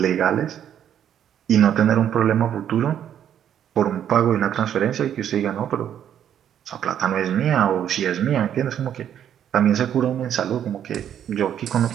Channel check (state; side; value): quieter; left; 9.7 dB